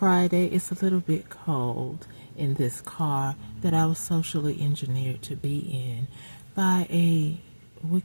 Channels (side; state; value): both; inverted; correlation -1.00